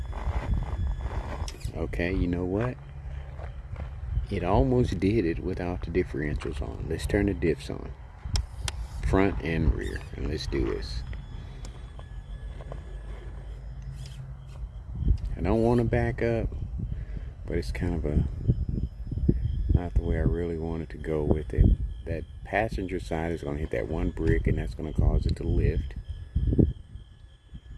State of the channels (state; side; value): identical; both; correlation 1.00